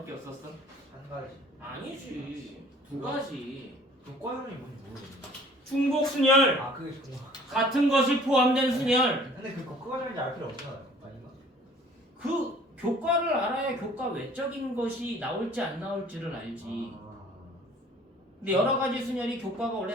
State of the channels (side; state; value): both; normal; correlation 0.52